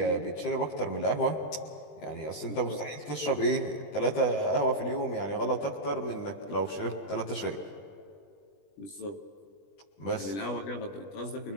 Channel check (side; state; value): right; late; 20 ms